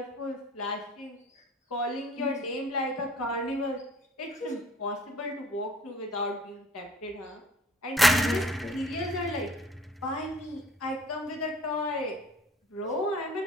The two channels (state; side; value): normal; both; correlation 0.53